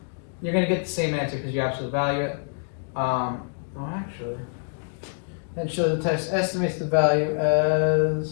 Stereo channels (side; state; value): right; silent; digital silence